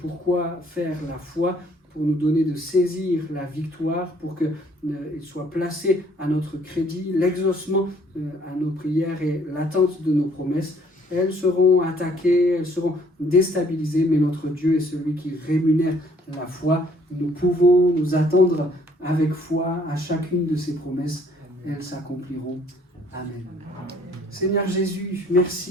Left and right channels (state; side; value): normal; both; correlation 0.61